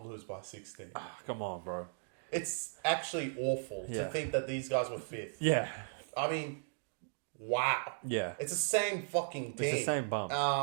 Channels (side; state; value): left; silent; digital silence